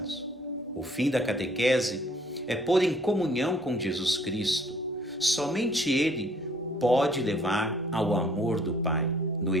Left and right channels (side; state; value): both; normal; correlation 0.59